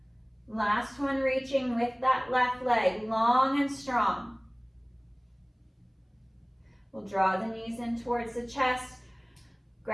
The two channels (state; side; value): identical; both; correlation 1.00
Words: Last one, reaching with that left leg, long and strong. We'll draw the knees in towards the chest,